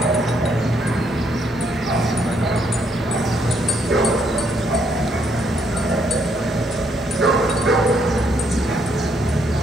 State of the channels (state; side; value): normal; both; correlation 0.72